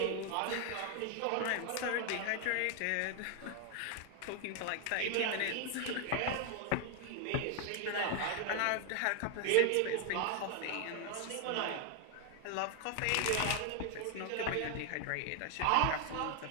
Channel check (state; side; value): different; both; correlation 0.01